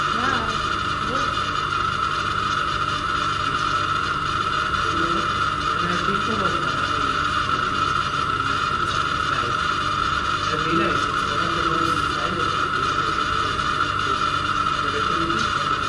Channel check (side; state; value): both; identical; correlation 1.00